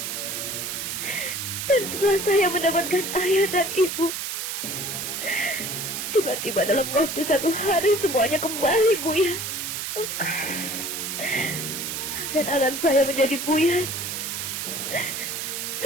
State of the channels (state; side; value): noise; right; hiss, 4 dB below the sound